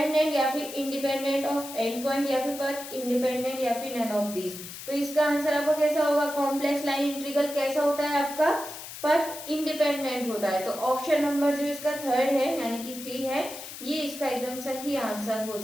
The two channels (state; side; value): noise; left; hiss, 11 dB below the sound